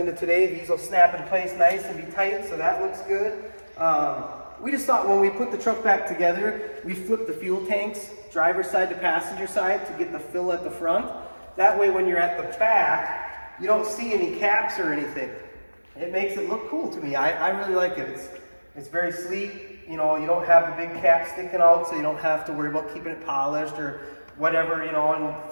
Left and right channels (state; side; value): inverted; both; correlation -1.00